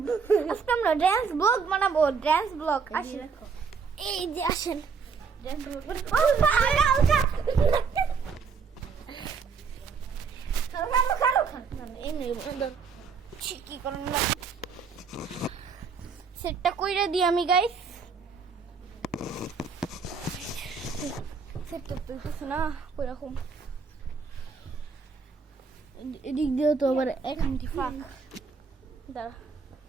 ড্যান্স ব্লগ বানাবো, ড্যান্স ব্লগ। আসেন এই যে আসেন ড্যান্স ব্লগ কি করেন না সেটটা কইরা দিই আমি গাইস। সেটটা তো না ওইরকম এদিক দিয়ে তো আবার এখানটি ফাঁক দাঁড়া।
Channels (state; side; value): quieter; left; 5.5 dB